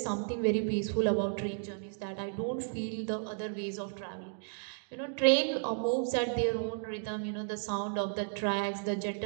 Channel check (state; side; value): silent; left; digital silence